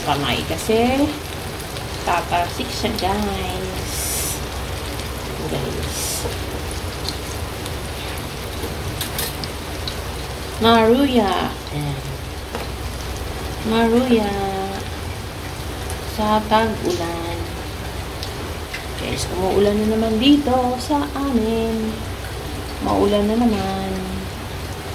kamay kasi tatasik siya, guys. Maruya. Ayan. Maruya. Sa tag-ulan. Guys, umuulan na naman dito sa amin. Maulan na naman.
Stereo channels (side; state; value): both; identical; correlation 1.00